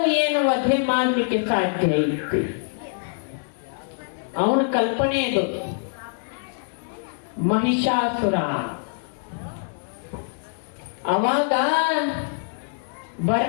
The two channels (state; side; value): silent; right; digital silence